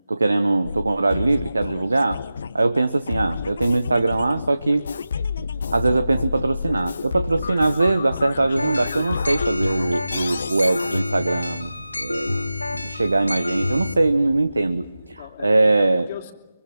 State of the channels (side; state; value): both; inverted; correlation -0.94